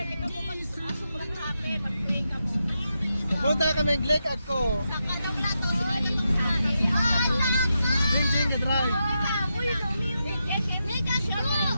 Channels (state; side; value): inverted; both; correlation -0.86